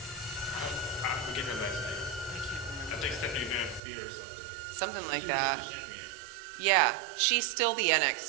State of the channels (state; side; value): drops out; left; at 3.8 s